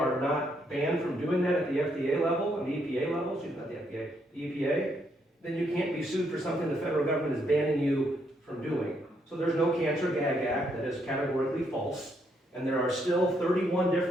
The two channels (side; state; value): both; normal; correlation 0.75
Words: not banned from doing that at the FDA level, and the EPA level, excuse me, not the FDA, the EPA, then you can't be sued for something the federal government is banning you from doing. So there's no Cancer Gag Act. That is categorically false. And there are still 31